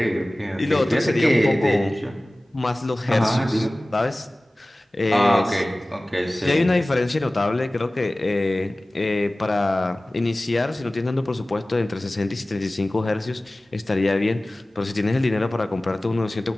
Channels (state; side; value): normal; both; correlation 0.98